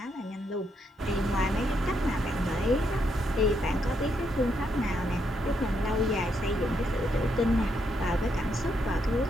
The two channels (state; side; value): normal; both; correlation 0.78